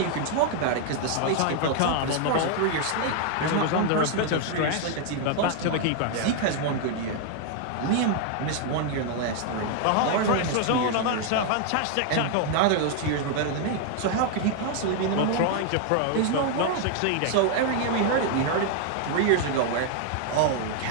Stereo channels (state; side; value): different; both; correlation 0.00